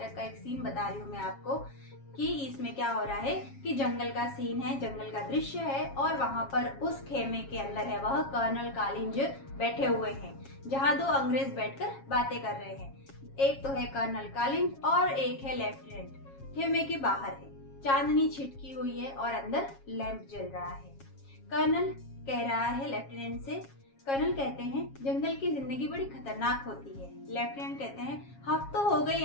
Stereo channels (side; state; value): right; late; 7.3 ms